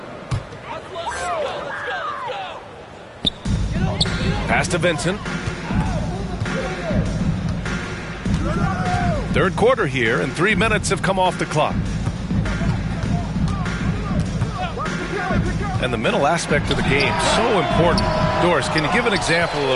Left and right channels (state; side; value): identical; both; correlation 1.00